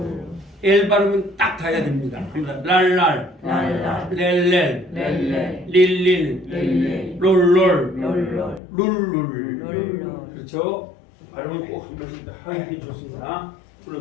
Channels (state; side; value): drops out; right; at 8.6 s